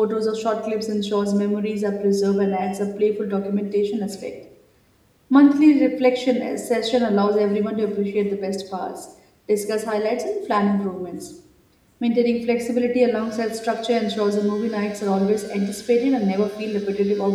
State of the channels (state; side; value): identical; both; correlation 1.00